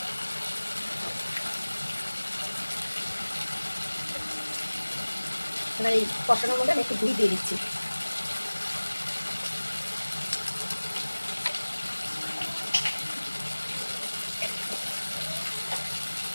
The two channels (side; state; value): both; inverted; correlation -1.00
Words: এবার এই কষানোর মধ্যে আমি একটু দই দিয়ে দিচ্ছি।